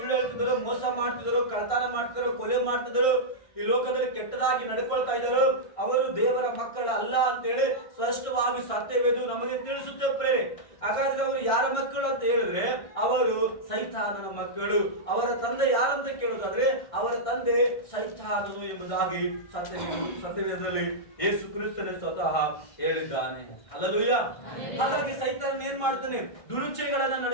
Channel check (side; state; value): right; late; 1.6 ms